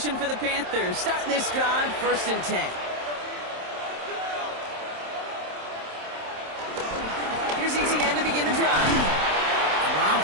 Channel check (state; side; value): late; left; 27 ms